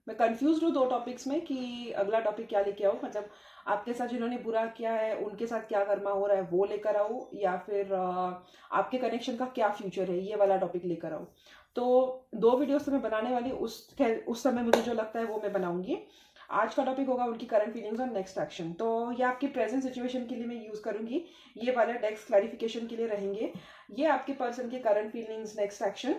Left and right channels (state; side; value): identical; both; correlation 1.00